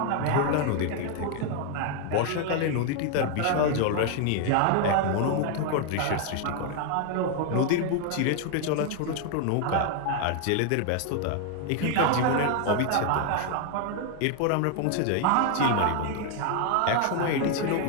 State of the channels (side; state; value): both; different; correlation 0.00